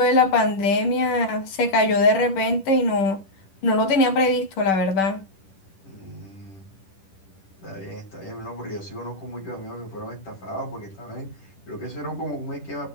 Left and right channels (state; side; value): late; right; 10 ms